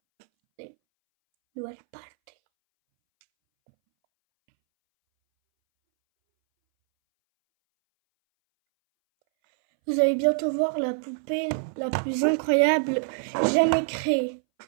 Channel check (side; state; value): left; silent; 62 dB below the other